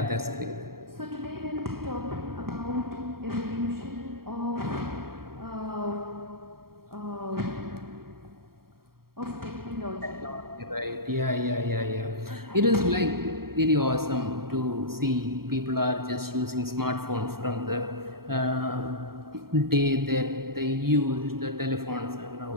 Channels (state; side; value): late; left; 0.93 ms